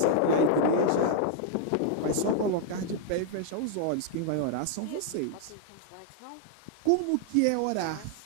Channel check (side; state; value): both; different; correlation -0.01